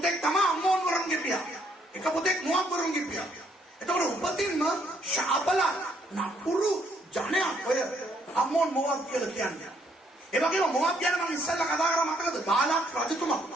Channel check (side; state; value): both; normal; correlation 0.70